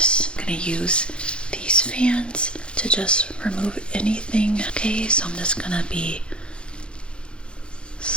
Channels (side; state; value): right; late; 0.056 ms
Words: I'm going to use these fans to just remove anything. Okay, so I'm just going to be